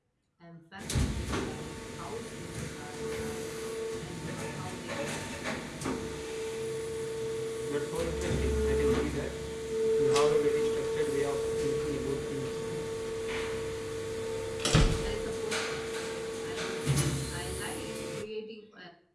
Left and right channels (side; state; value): both; identical; correlation 1.00